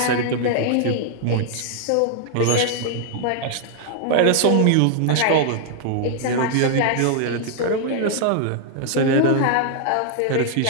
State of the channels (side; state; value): both; different; correlation 0.00